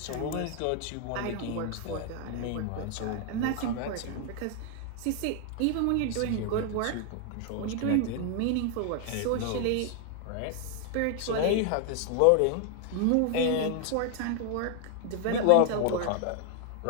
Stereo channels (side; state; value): both; different; correlation 0.00